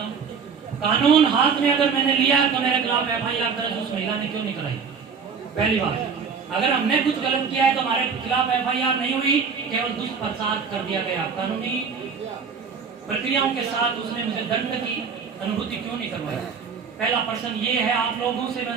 हूँ। कानून हाथ में अगर मैंने लिया तो मेरे खिलाफ FIR दर्ज उस महिला ने क्यों नहीं कराई? पहली बात, अगर हमने कुछ गलत किया है तो हमारे खिलाफ FIR नहीं हुई, केवल दुष्प्रचार कर दिया गया। कानूनी प्रक्रियाओं के साथ उसने मुझे दंड की अनुभूति क्यों नहीं करवाई? पहला प्रश्न ये है, आप लोगों से मैं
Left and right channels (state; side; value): quieter; left; 5.9 dB